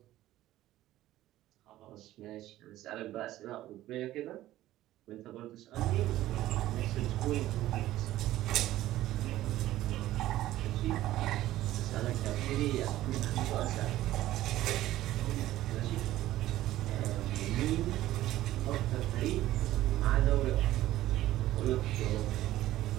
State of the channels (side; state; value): left; quieter; 14.8 dB